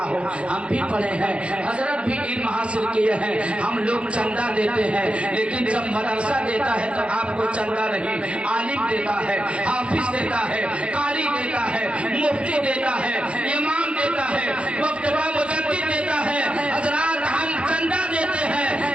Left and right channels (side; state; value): left; late; 0.059 ms